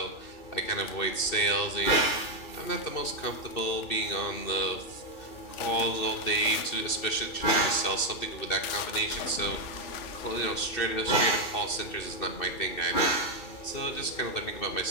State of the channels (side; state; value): right; late; 2.7 ms